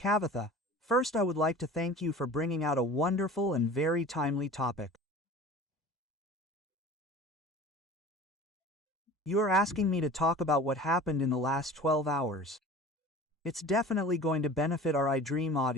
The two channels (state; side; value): normal; both; correlation 0.40